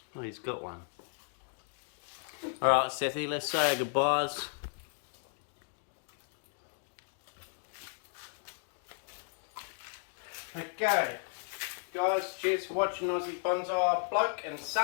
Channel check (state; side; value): silent; right; 55 dB below the other